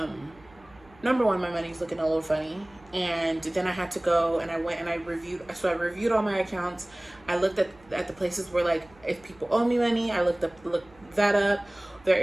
number one, my money's looking a little funny. And then I had to go and I went and I reviewed all my accounts. I looked at the places where, like, if people owe me money, I looked that up. There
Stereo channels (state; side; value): noise; right; hum, 27 dB below the sound